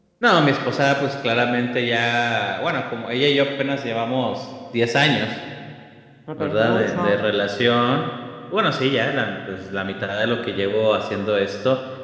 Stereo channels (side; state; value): both; identical; correlation 1.00